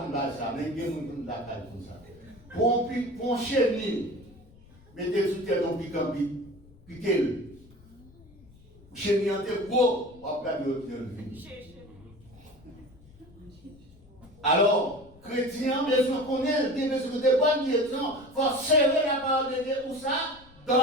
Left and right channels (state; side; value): noise; left; rumble, 24 dB below the sound